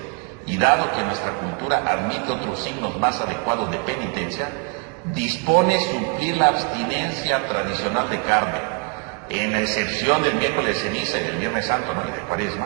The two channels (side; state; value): left; quieter; 35.2 dB